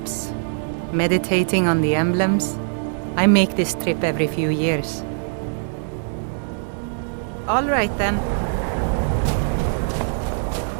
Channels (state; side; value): silent; left; digital silence